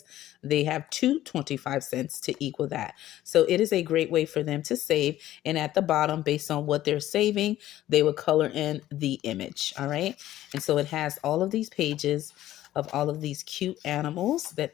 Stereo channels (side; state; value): right; quieter; 13.9 dB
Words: they have two 25 cents to equal that. So it is a great way for them to save, and at the bottom, based on what they're saving, they would color in the image. All right, and so it has all of these pages of all of these cute animals that